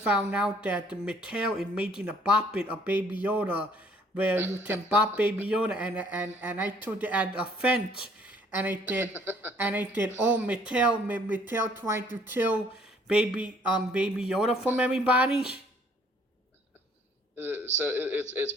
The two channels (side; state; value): both; normal; correlation 0.60